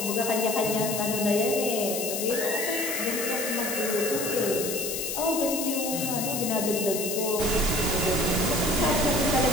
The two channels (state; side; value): noise; left; hiss, 3 dB below the sound